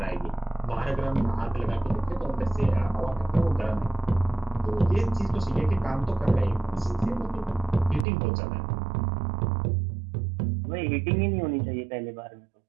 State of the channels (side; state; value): left; drops out; at 8.1 s